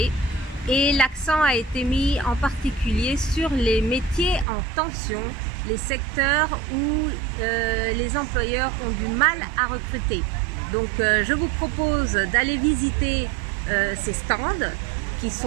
et l'accent a été mis en particulier sur les métiers en tension, les secteurs où les employeurs ont du mal à recruter. Donc je vous propose d'aller visiter ces stands qui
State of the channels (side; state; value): left; drops out; at 4.5 s